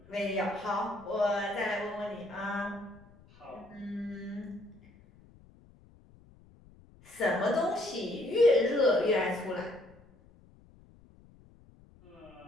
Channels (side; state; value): left; noise; rumble, 25 dB below the sound